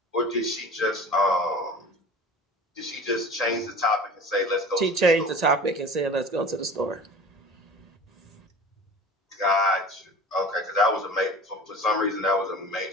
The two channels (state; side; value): normal; both; correlation 0.39